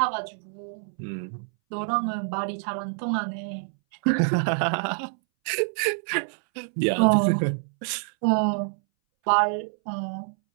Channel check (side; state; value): left; silent; 61 dB below the other